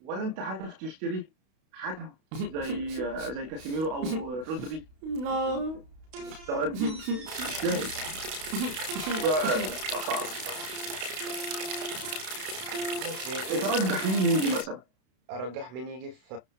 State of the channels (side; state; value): left; late; 32 ms